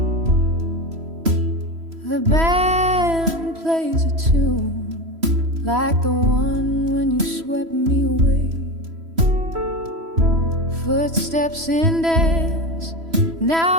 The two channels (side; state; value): left; late; 3.0 ms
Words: The band plays a tune like the one when you swept me away. Footsteps in dance,